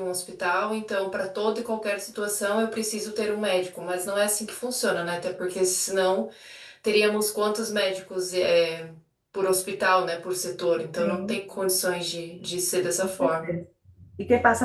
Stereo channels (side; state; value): both; identical; correlation 1.00